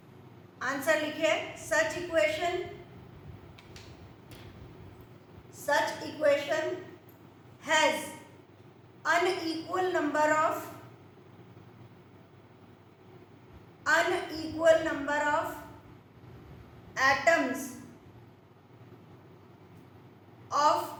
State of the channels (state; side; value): identical; both; correlation 1.00